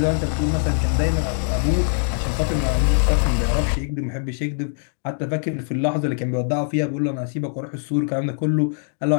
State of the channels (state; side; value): silent; right; digital silence